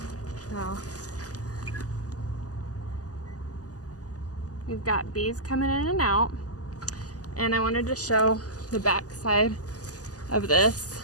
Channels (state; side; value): late; right; 0.67 ms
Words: So we've got bees coming in and out, and I wanted to show the back side of this.